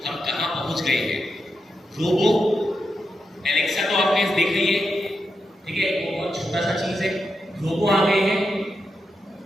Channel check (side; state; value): both; normal; correlation 0.86